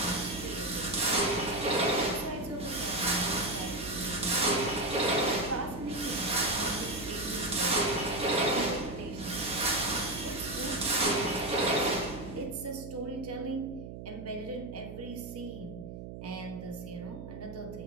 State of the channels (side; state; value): right; noise; hum, 10 dB below the sound